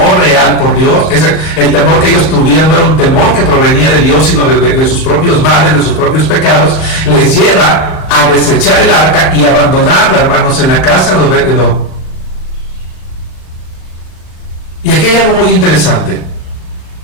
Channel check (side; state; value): right; late; 38 ms